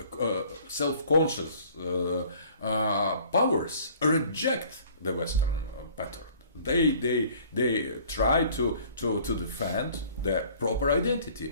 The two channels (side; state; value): both; inverted; correlation -0.53